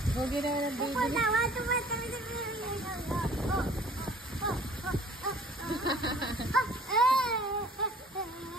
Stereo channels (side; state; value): both; normal; correlation 0.51